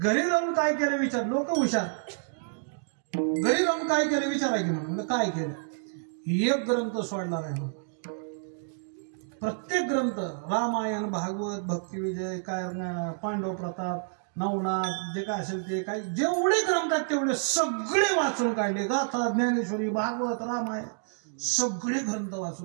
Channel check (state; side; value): silent; left; digital silence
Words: जाऊन काय केलं विचार. लोक हुशार. घरी जाऊन काय केलं विचारा की म्हणून. काय केलं? एक ग्रंथ सोडला नाही. प्रत्येक ग्रंथ रामायण, भागवत, भक्तिविजय, काय पांडव प्रताप, नवनाथ, जे काय असेल ते काय जेवढे ग्रंथ आहेत तेवढे सगळे वाचून काढले. गाथा, ज्ञानेश्वरी, भागवत, रामायण सगळे ग्रंथ